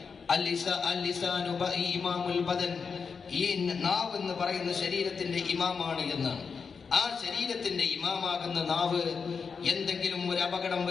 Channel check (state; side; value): quieter; right; 5.6 dB